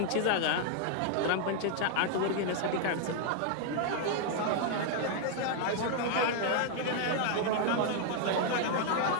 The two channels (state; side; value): different; both; correlation 0.00